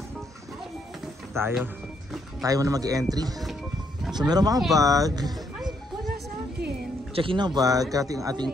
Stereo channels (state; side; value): normal; both; correlation 0.73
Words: Tayo muna mag-entry. So meron mga bag. Check-in ng bag.